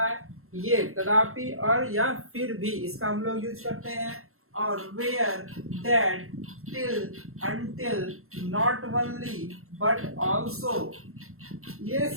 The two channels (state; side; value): late; left; 0.62 ms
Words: है। ये तथापि और या फिर भी इसका हम लोग यूज करते हैं। और where, that, till, until, not only but also, ये